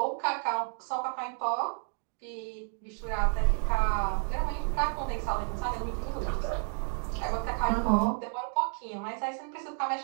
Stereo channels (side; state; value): left; silent; 57 dB below the other